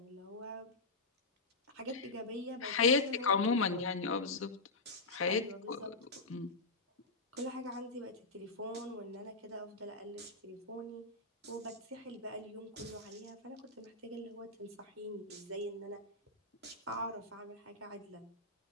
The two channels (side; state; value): right; quieter; 3.5 dB